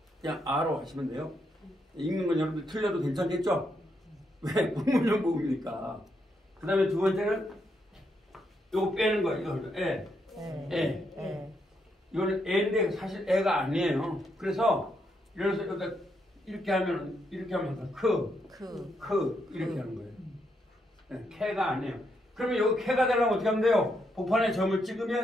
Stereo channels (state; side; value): normal; both; correlation 0.79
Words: 그냥 아로 하시면 돼요. 읽는 건 여러분들 틀려도 괜찮겠죠? 왜? 불분명 모음이니까. 그 다음에 두 번째는 요거 빼는 거예요. 이거 애. 이거는 애인데 사실 애가 아니에요. 그래서 이래서 여기다 이렇게 하면 이렇게 이렇게 하는 거예요. 네, 캐가 아니에요. 그러면 여기 캐가 되려면 어떻게 하면 돼요? 복판에 점을